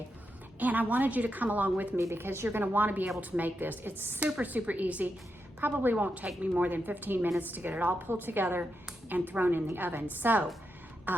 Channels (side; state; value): both; normal; correlation 0.85